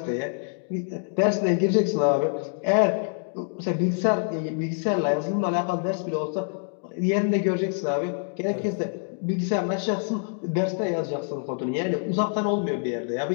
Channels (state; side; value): silent; right; 56 dB below the other